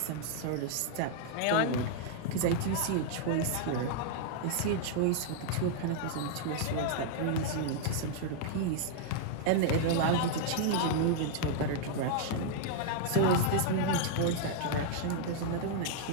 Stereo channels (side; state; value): both; different; correlation -0.01